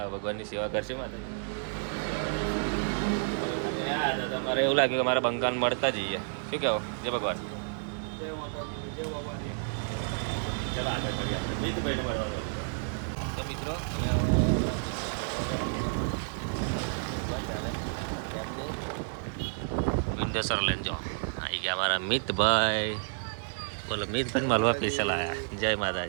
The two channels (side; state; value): left; silent; 57 dB below the other